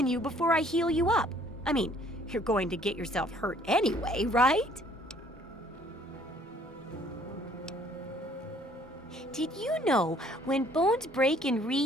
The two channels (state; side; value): normal; both; correlation 0.59